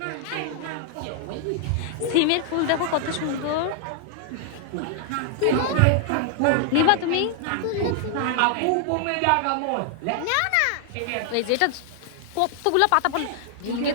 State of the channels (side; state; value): both; different; correlation 0.00